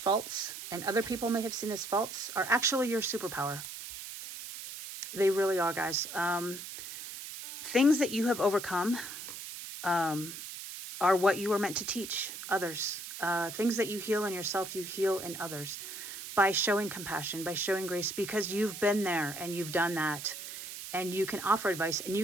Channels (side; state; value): right; noise; hiss, 10 dB below the sound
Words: and other people may have seen as faults are actually your superpower. They really are, guys. Things that you have overcome are what you were meant to teach others. Things that you heal in yourself, you heal in others by showing compassion, by showing grace, because you've been there and you've done that, and you can offer advice and